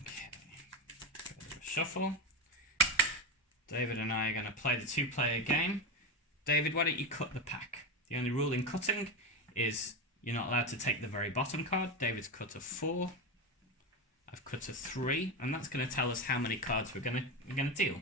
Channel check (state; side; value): normal; both; correlation 0.15